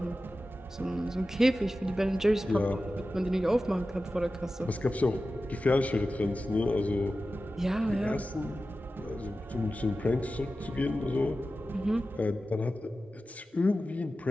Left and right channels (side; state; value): both; normal; correlation 0.94